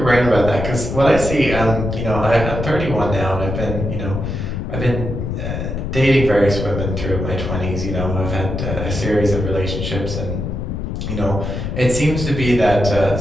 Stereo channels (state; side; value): noise; left; rumble, 4 dB below the sound